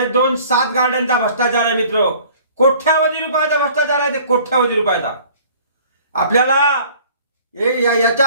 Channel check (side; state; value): both; inverted; correlation -0.52